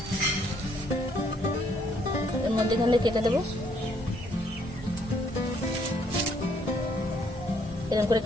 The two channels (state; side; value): normal; both; correlation 0.68